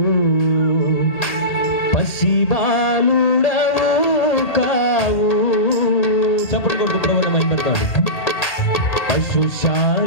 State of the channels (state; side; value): late; right; 1.8 ms